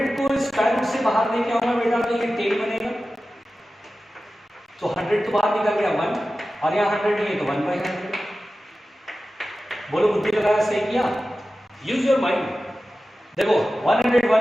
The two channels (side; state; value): both; normal; correlation 0.94